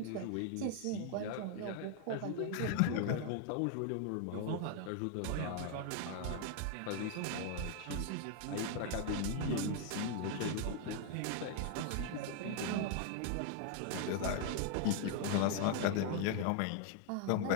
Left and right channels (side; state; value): both; different; correlation 0.00